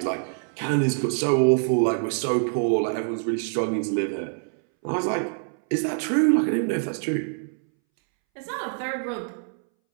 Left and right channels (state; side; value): silent; left; 62 dB below the other